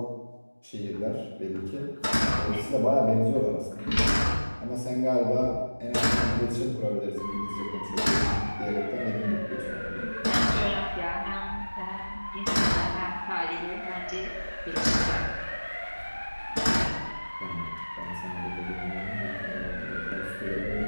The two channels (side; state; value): both; inverted; correlation -1.00